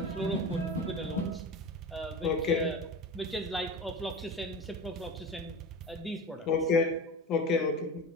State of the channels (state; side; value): normal; both; correlation 0.30